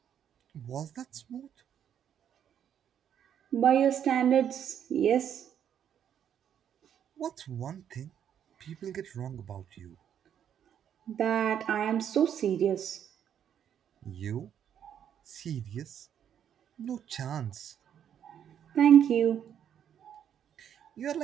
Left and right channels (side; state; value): left; quieter; 9.2 dB